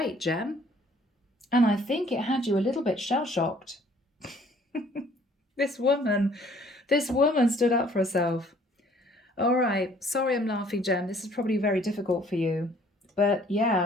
Gem. And I think it had you a little bit shell-shocked. This woman stood up for herself. All right, sorry I'm laughing, Gem. This is probably very difficult for you. But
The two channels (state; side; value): normal; both; correlation 0.58